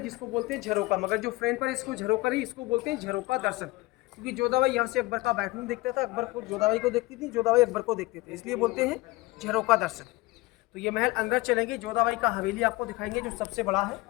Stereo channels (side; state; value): right; quieter; 21.1 dB